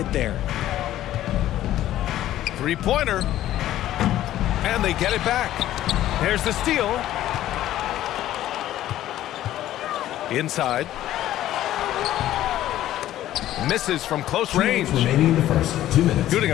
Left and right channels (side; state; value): right; quieter; 13.4 dB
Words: there. Three-pointer. And they get it back. There's the steal. Inside. Misses from close range. Remaining in the first 2 minutes. Shooting